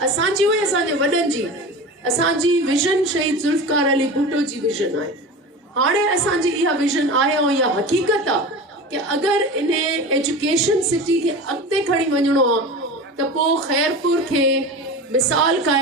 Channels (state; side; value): normal; both; correlation 0.31